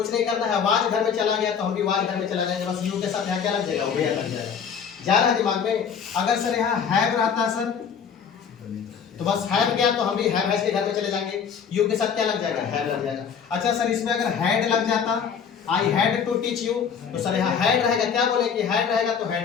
नहीं करना है, वाज घर में चला गया तो हम भी वाज घर में चला जाएंगे, बस यू के साथ यहाँ क्या लग जाएगा, वेयर लग जाएगा। जा रहा है दिमाग में। अगर सर यहाँ हैव रहता सर, तो बस हैव गया तो हम भी हैव हैज के घर में चले जाएंगे, यू के साथ क्या लग जाएगा, हैव लग जाएगा। अच्छा सर, इसमें अगर हैड लग जाता, I had to teach you, तो सर यहाँ हैड रहेगा, क्या बोले कि हैड रहेगा तो हैड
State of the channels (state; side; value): quieter; right; 7.0 dB